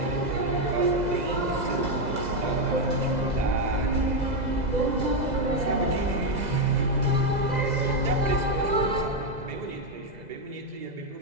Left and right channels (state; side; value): late; left; 2.0 ms